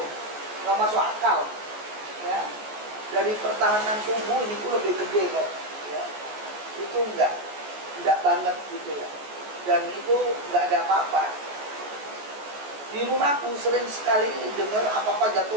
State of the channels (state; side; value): late; left; 14 ms